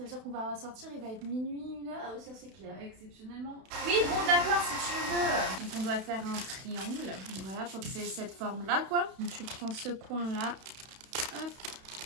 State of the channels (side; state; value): left; late; 32 ms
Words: veut dire qu'on va sortir, il va être minuit, 1h. Ah oui, ça c'est clair. Exceptionnellement. Oui, bon, d'accord, si tu veux. Donc, on doit faire un triangle. Donc, voilà, faut que c'est cette forme-là, quoi. Donc, tu prends ce coin-là. Hop.